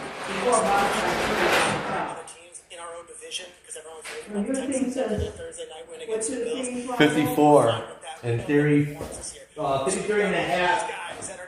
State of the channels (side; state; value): both; identical; correlation 1.00